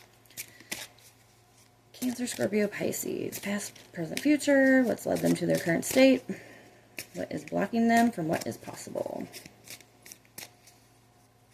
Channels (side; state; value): both; identical; correlation 1.00